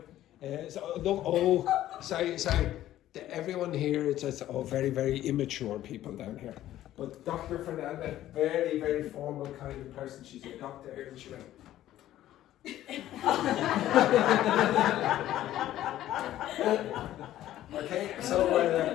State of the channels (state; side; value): quieter; right; 13.4 dB